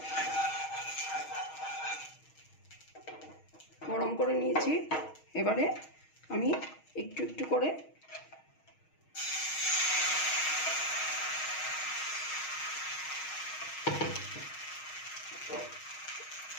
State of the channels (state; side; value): late; right; 6.4 ms